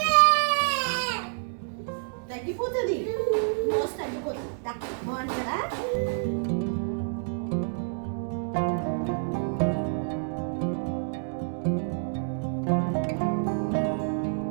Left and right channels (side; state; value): left; silent; digital silence